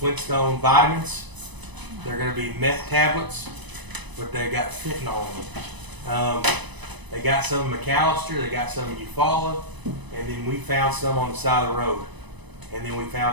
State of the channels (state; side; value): late; left; 1.0 ms